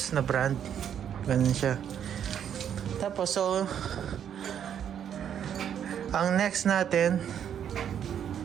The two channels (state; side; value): quieter; left; 9.0 dB